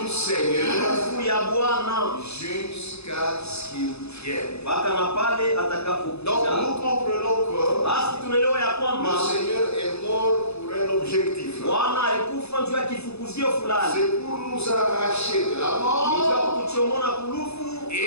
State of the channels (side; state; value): right; late; 0.79 ms